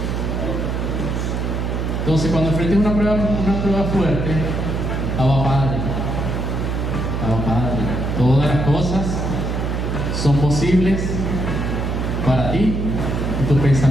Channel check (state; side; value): noise; right; hum, 1 dB below the sound